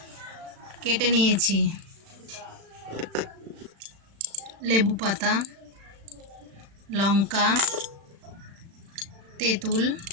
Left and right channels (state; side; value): late; left; 36 ms